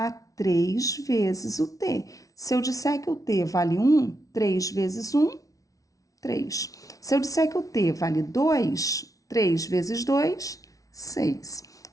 3 vezes o T. Se eu disser que o T vale 1, 3 vezes 1, 3. Se eu disser que o T vale 2, 3 vezes 2, 6.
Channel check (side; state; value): right; late; 0.17 ms